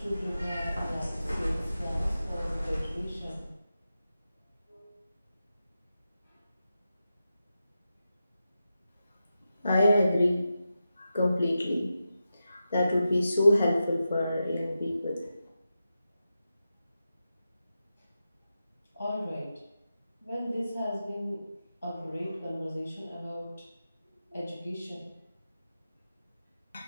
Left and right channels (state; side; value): inverted; both; correlation -0.90